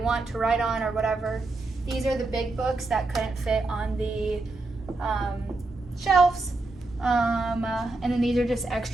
to write on or whatever. These are the big books that couldn't fit on the shelves. And then these are just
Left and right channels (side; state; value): left; quieter; 3.2 dB